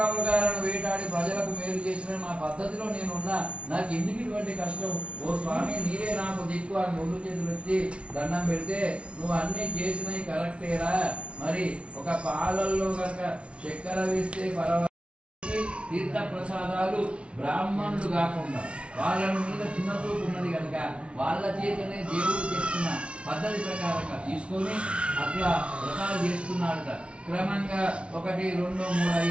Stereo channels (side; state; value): left; late; 0.060 ms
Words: వేటాడి ప్రజలకు మేలు చేసిన నా పద్ధతిలో నేనున్నా, నాకు ఎందుకు ఇటువంటి కష్టం? ఓ స్వామి, నీరే నాకు దిక్కు అని ముందు చేతులు ఎత్తి దండం పెడితే, నువ్వు అన్ని చేసినవి కరెక్టేరా, మరి ఒక పాలల్లో కనుక చక్కెర వేస్తే పర్వాలేదు, తీర్థ ప్రసాదాలు బ్రాహ్మణులు కాకుండా వాళ్ళ మీద చిన్న చూపు ఉన్నది కనుక వాళ్ళ చేతనే దేవుడు చెప్తున్న పద్ధతి ప్రకారంగా తీసుకొని అట్లా వ్రతాలు చేస్తున్నాడట. క్రమంగా 1, 2, 3